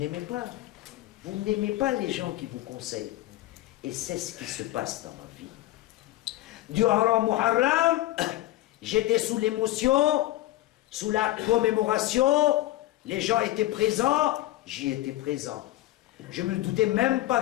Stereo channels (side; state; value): right; quieter; 16.0 dB